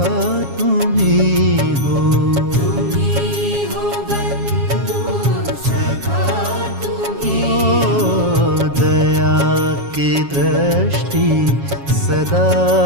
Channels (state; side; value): late; left; 7.3 ms